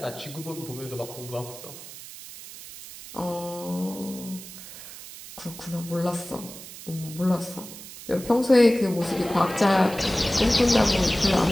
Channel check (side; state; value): right; noise; hiss, 14 dB below the sound